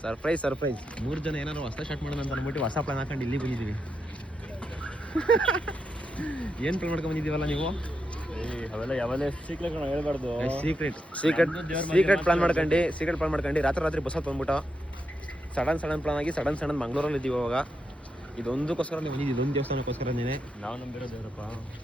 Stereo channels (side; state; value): both; normal; correlation 0.84